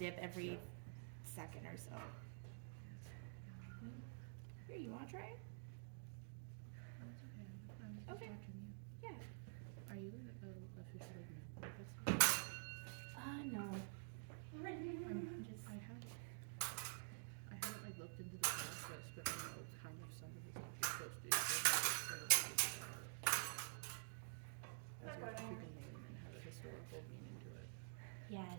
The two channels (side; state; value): left; silent; digital silence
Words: every second or so. Here, you wanna try it? That's okay. I'm just Okay. watching you. Yeah. Are you officially married? No. I'm Just I haven't like looked into the process, but I know kind of some of the stuff you're supposed to do. So as your freaking name and have a historical meaning to it. yeah.